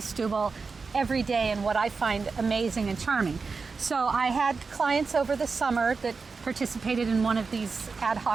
every day and what I find amazing and charming. So I had clients over the summer that participated in one of these ad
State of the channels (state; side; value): quieter; left; 4.6 dB